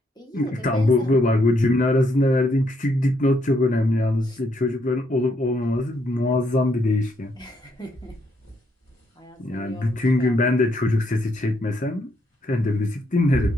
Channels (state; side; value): normal; both; correlation 0.74